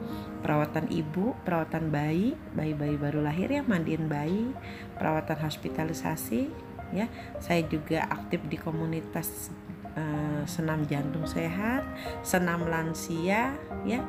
perawatan ibu, perawatan bayi baru lahir ya, mandiin bayi, perawatan hospitalisasi ya. Saya juga aktif di komunitas senam jantung sehat, senam lansia ya.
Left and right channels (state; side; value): identical; both; correlation 1.00